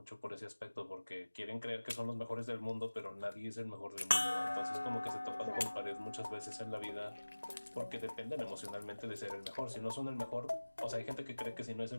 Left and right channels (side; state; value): both; inverted; correlation -1.00